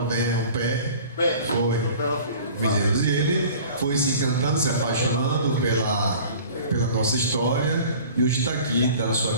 pé, foi. E ele foi se encantando, se apaixonando pela nossa história e hoje está aqui dando a sua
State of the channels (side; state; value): both; inverted; correlation -0.44